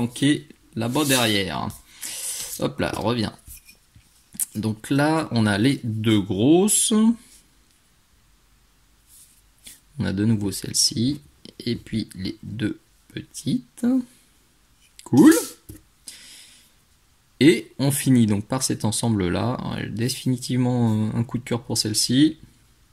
là-bas derrière. Hop là, reviens. Donc là, on a les deux grosses. On a de nouveau celle-ci. Et puis les deux petites. Cool. Et on finit donc par cet ensemble-là. Définitivement un coup de cœur pour celle-ci.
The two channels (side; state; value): both; identical; correlation 1.00